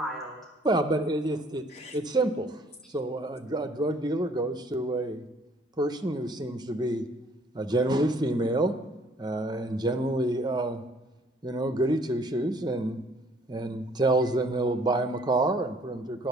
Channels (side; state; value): both; normal; correlation 0.60